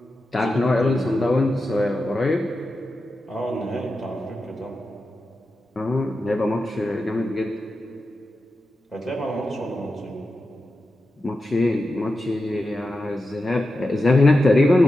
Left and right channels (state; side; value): normal; both; correlation 0.90